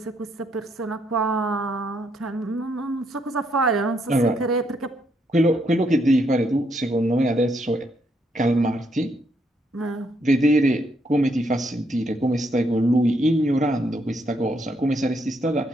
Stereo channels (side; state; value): both; normal; correlation 0.75